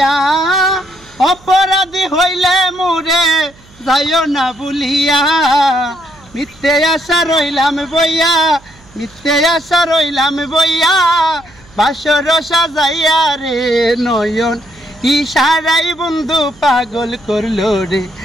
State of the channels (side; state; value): right; noise; hum, 26 dB below the sound